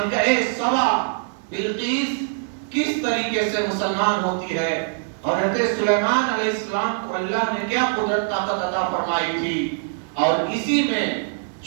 سبا بلقیس کس طریقے سے مسلمان ہوتی ہے، اور حضرت سلیمان علیہ السلام کو اللہ نے کیا قدرت طاقت عطا فرمائی تھی۔ اور اسی میں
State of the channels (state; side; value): silent; left; digital silence